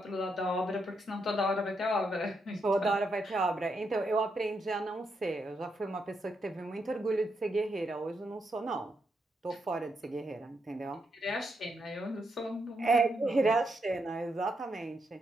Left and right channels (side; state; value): both; normal; correlation 0.81